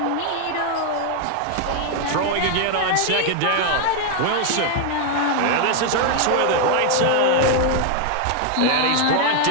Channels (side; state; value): both; different; correlation 0.00